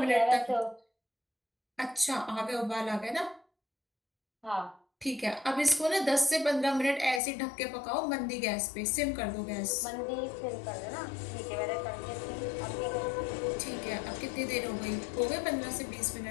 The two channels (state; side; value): drops out; right; at 7.2 s